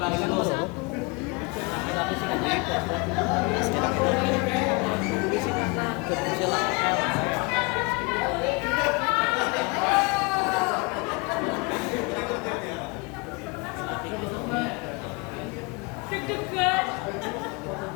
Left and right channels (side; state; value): right; quieter; 28.9 dB